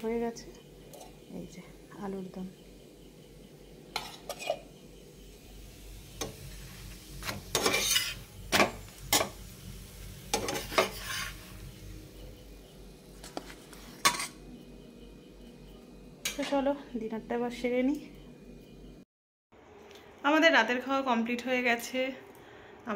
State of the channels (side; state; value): both; identical; correlation 1.00